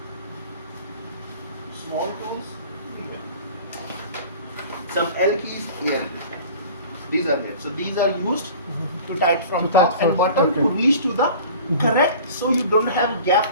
small tools. Some L keys here. These are there. So these are used to tight from top and bottom to reach to the correct, so you don't have gap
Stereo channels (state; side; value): inverted; both; correlation -0.43